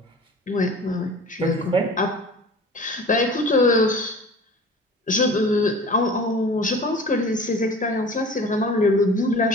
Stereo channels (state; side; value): normal; both; correlation 0.41